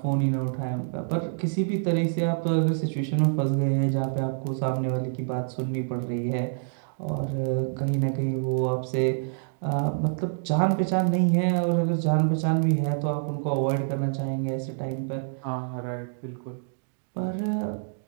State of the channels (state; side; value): silent; left; digital silence